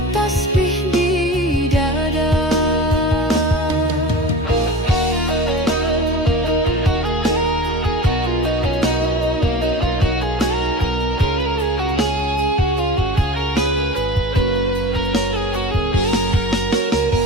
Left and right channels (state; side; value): normal; both; correlation 0.33